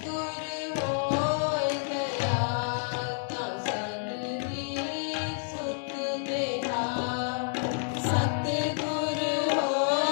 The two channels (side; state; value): right; silent; digital silence